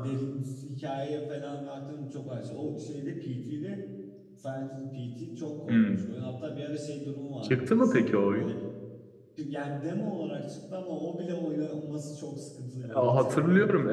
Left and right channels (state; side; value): identical; both; correlation 1.00